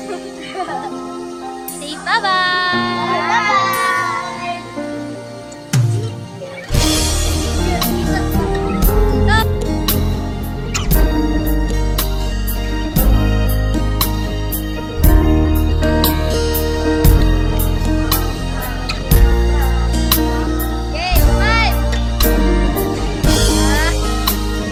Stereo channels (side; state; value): both; identical; correlation 1.00